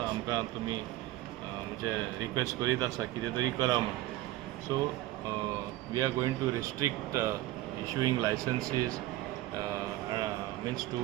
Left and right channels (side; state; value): left; quieter; 16.4 dB